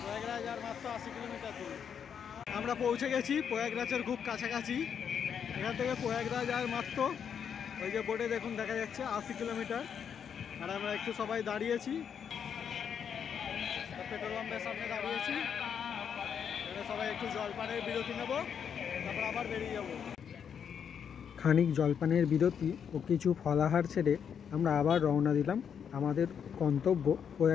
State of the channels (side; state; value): right; quieter; 7.7 dB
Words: প্রয়াগরাজ আর মাত্র 80 কিলোমিটার দূর। আমরা পৌঁছে গেছি প্রয়াগরাজের খুব কাছাকাছি। এখান থেকে প্রয়াগরাজ আর মাত্র ওই যে বোর্ডে দেখুন দেখা যাচ্ছে 80 কিলোমিটার। আর আমরা একটু সবাই দাঁড়িয়েছি, পেট্রোল পাম্পের সামনে দাঁড়িয়েছি। এখানে সবাই একটু জলপানের বিরতি নেব, তারপর আবার বেরিয়ে যাব। খানিক জলপানের বিরতি ও কিছু ফলাহার ছেড়ে আমরা আবার রওনা দিলাম আমাদের গন্তব্য